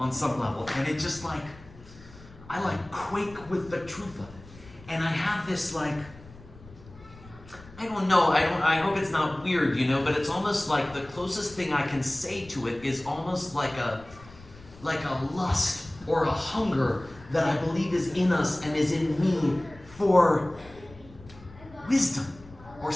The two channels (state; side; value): noise; left; rumble, 20 dB below the sound